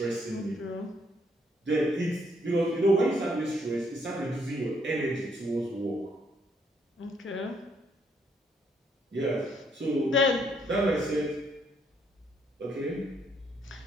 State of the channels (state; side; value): normal; both; correlation 0.71